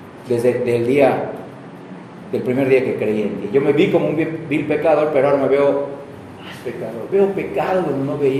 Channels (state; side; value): identical; both; correlation 1.00